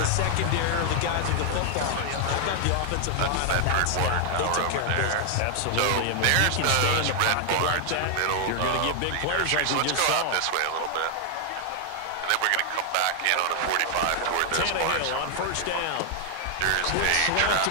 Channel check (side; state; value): both; different; correlation 0.00